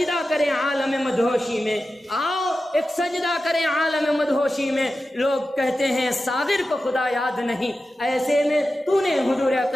کریں عالم مدہوشی میں، آؤ ایک سجدہ کریں عالم مدہوشی میں۔ لوگ کہتے ہیں ساغر کو خدا یاد نہیں، ایسے میں تو نے حضور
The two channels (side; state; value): both; normal; correlation 0.93